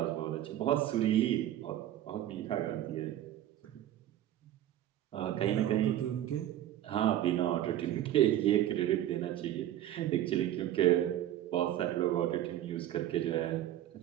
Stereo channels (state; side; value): quieter; left; 12.4 dB